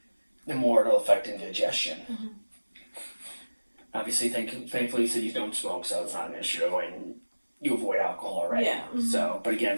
the more it'll affect indigestion. Mm-hmm. Obviously, thankfully, you said you don't smoke, so it's not an issue, and you avoid alcohol already. Yeah. Mm-hmm. So, but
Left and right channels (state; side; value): inverted; both; correlation -1.00